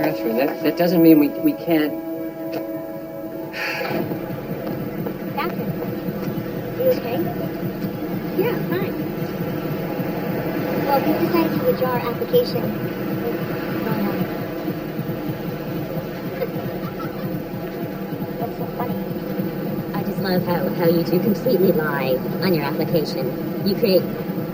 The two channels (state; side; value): identical; both; correlation 1.00